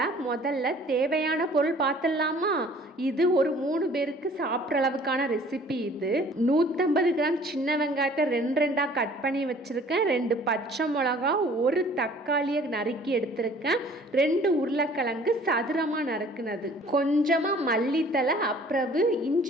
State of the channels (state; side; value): normal; both; correlation 0.52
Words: முதல்ல தேவையான பொருள் பார்த்துடலாமா? இது ஒரு 3 பேருக்கு சாப்பிட்ற அளவுக்கான ரெசிபி. இது 150 கிராம் சின்ன வெங்காயத்தை 2 கட் பண்ணி வச்சிருக்கேன். 2 பச்சை மிளகா, 1 தக்காளியை நறுக்கி எடுத்திருக்கேன். 2 உருளைக்கிழங்கு சதுரமாக நறுக்குனது, கொஞ்சமாக மல்லித்தலை, அப்புறம்